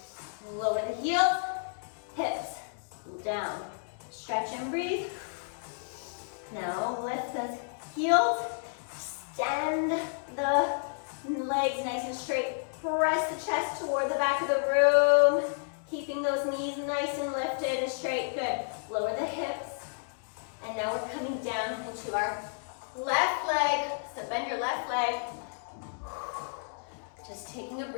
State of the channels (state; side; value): silent; right; digital silence